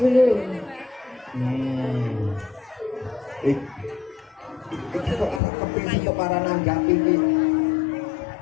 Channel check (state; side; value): drops out; right; at 5.4 s